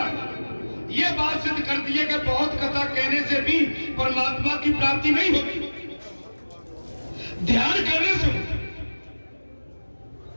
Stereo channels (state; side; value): inverted; both; correlation -1.00